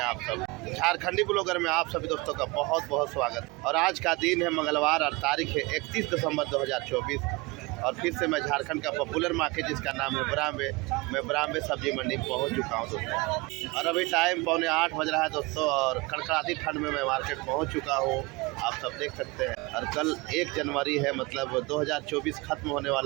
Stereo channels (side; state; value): left; quieter; 24.6 dB